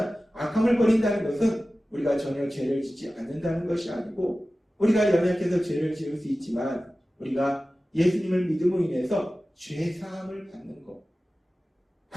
악함을 버린다는 것은 우리가 전혀 죄를 짓지 않는다는 것이 아니고, 우리가 연약해서 죄를 지을 수 있지만 우리가 예수님을 믿음으로 인해서 죄사함을 받는 것.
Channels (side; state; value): both; normal; correlation 0.96